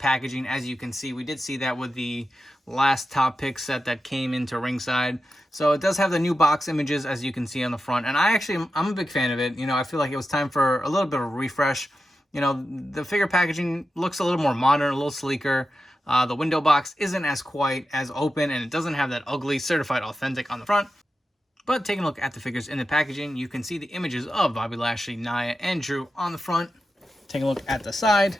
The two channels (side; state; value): both; normal; correlation 0.91